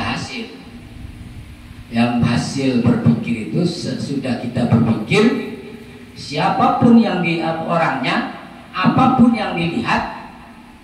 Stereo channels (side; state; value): both; identical; correlation 1.00